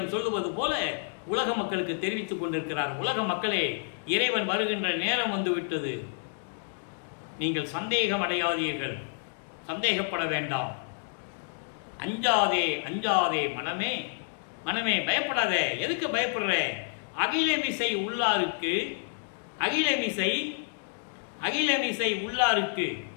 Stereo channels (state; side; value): silent; right; digital silence